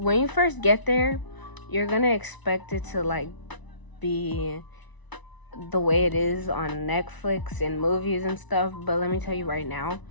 you first get there, you're gonna expect it to like be the way it is on Netflix and movies and stuff, but let me tell you right now,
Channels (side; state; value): right; late; 1.0 ms